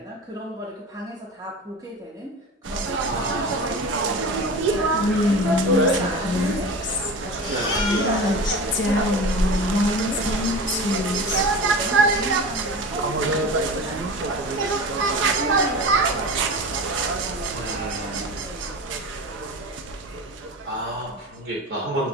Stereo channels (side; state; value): both; normal; correlation 0.32